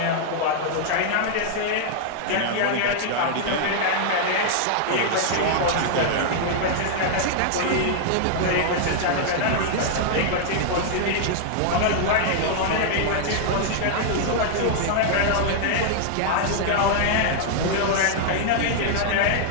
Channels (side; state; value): both; different; correlation -0.01